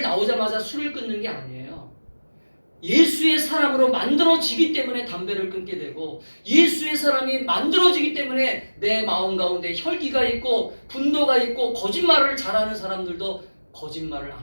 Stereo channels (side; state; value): both; inverted; correlation -1.00